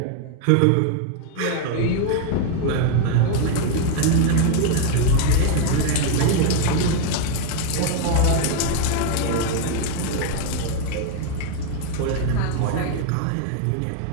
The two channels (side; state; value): both; different; correlation 0.00